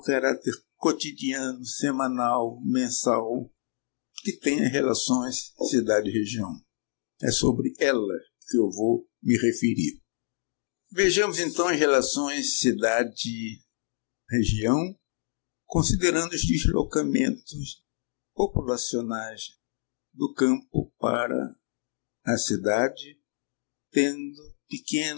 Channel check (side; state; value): right; silent; digital silence